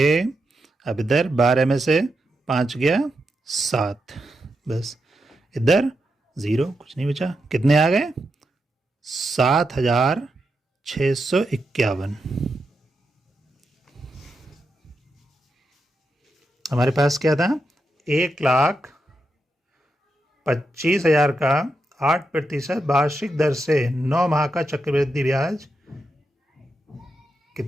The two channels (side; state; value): both; normal; correlation 0.85